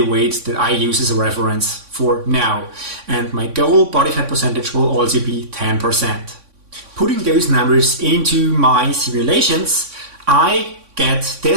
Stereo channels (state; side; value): late; left; 3.6 ms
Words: weight that I use as a reference for now. And my goal body fat percentage will also be 10%. Putting those numbers into my simulations, I get